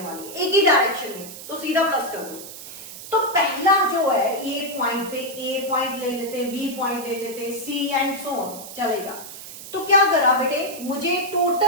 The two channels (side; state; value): right; noise; hiss, 13 dB below the sound